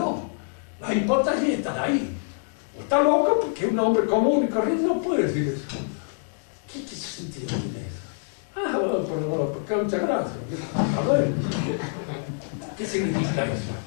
La hipótesis está ahí. O está loco porque un hombre común y corriente no puede decir eso. ¿Qué sentido tiene eso? Ah, bueno, pero muchas gracias. A ver, ¿qué significa eso?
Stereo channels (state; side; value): silent; right; digital silence